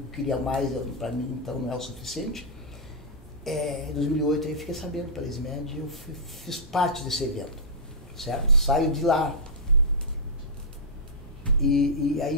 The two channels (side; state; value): both; normal; correlation -0.09